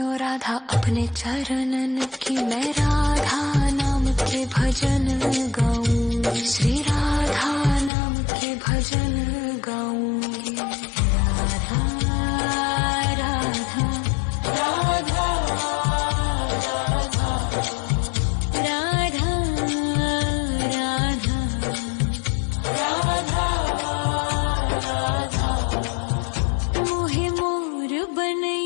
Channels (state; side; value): drops out; right; at 7.9 s